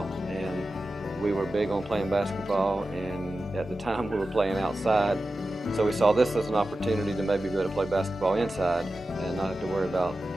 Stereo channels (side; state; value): both; normal; correlation 0.93